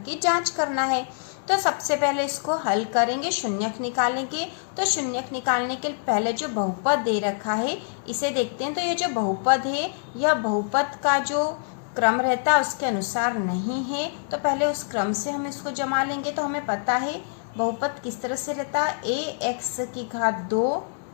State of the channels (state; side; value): silent; right; 61 dB below the other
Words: की जांच करना है। तो सबसे पहले इसको हल करेंगे, शून्यक निकालेंगे। तो शून्यक निकालने के पहले जो बहुपद दे रखा है इसे देखते हैं। तो ये जो बहुपद है यह बहुपद का जो क्रम रहता है उसके अनुसार नहीं है, तो पहले उस क्रम से हम इसको जमा लेंगे। तो हमें पता है बहुपद किस तरह से रहता है, ax की घात 2